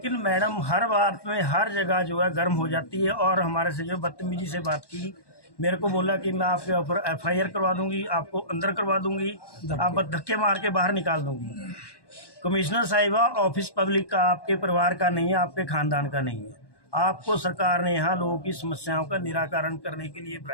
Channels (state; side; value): late; right; 1.1 ms